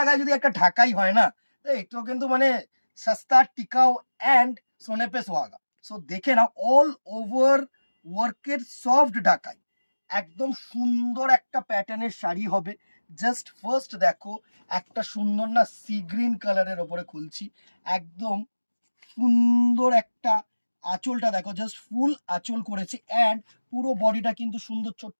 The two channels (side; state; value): both; inverted; correlation -1.00